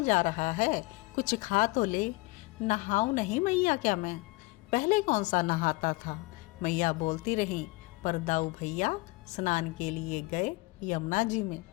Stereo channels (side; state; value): right; quieter; 23.4 dB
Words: जा रहा है, कुछ खा तो ले। नहाऊं नहीं मैया क्या मैं? पहले कौन सा नहाता था, मैया बोलती रही। पर दाऊ भैया स्नान के लिए गए यमुना जी में।